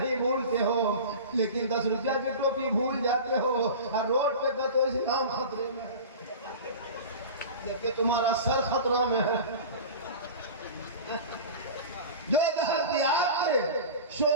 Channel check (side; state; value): both; inverted; correlation -0.33